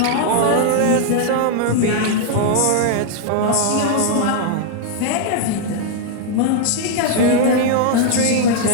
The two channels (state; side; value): different; both; correlation 0.00